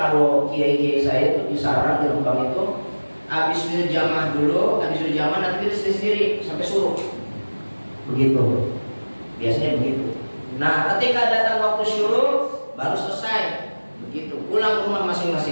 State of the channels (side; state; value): both; inverted; correlation -1.00